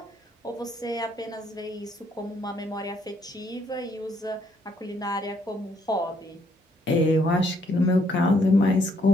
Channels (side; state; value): both; normal; correlation 0.70